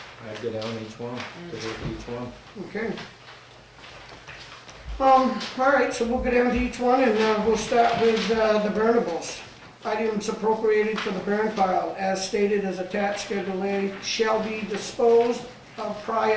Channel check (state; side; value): identical; both; correlation 1.00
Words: I'd go down each one, to look at each one. Okay. All right, so we'll go down to each one, and we'll start with the burnables. Items appropriated for the burn pile, as stated as attached Schedule A, shall be disposed of